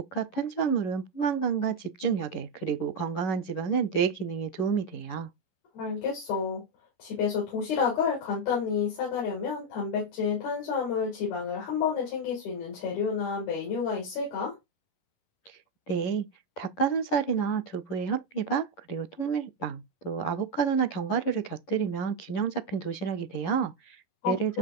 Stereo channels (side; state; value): right; late; 11 ms